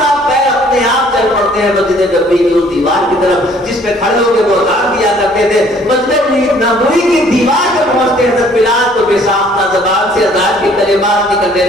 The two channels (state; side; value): normal; both; correlation 0.58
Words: پیر اپنے آپ چل پڑتے ہیں مسجد نبوی کی اس دیوار کی طرف جس پہ کھڑے ہو کے وہ اذان دیا کرتے تھے. مسجد نبوی کی دیوار پہ پہنچتے ہیں حضرت بلال تو بے ساختہ زبان سے اذان کے کلمات نکلنے